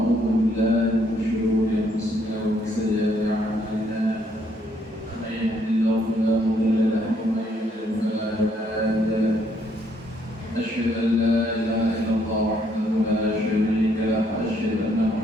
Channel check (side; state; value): both; normal; correlation 0.69